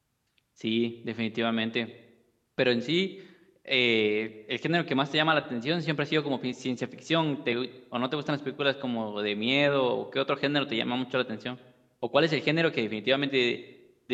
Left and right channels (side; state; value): both; identical; correlation 1.00